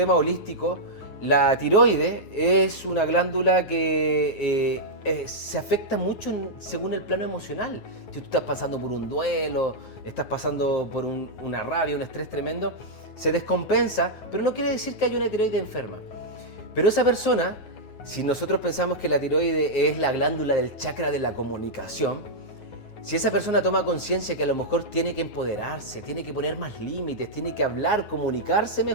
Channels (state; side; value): late; right; 9.5 ms